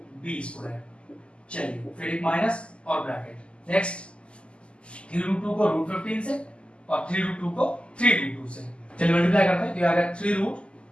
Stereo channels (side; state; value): right; late; 0.054 ms